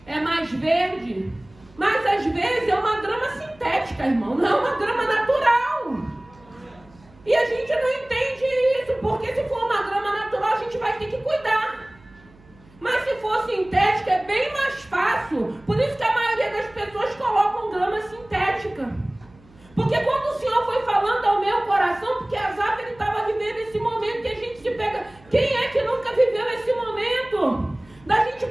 é mais verde, mas às vezes é uma grama sintética, irmão, não é uma grama natural. E a gente não entende isso, porque se for uma grama natural a gente vai ter que cuidar. Mas se for sintética é bem mais fácil. Por isso que a maioria das pessoas colocam grama sintética. Porque quando o Senhor foi falando ao meu coração, porque Asaf ele estava vivendo esse momento que a gente se pega. Quem é que nunca viveu esse momento? Da gente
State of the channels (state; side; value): noise; right; hum, 26 dB below the sound